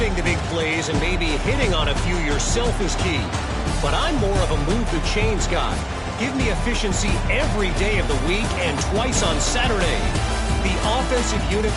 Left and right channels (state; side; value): identical; both; correlation 1.00